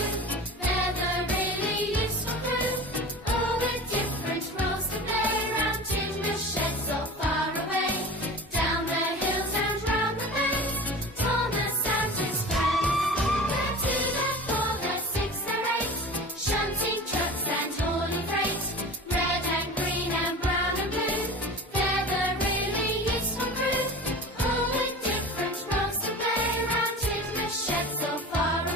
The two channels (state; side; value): normal; both; correlation 0.35